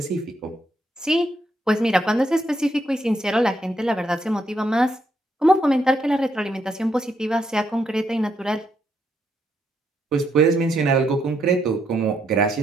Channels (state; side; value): normal; both; correlation 0.77